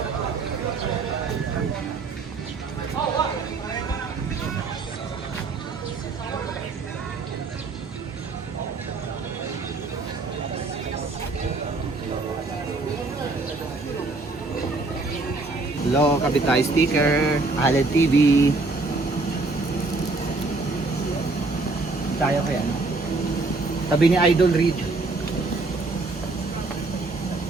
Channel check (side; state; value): left; quieter; 3.5 dB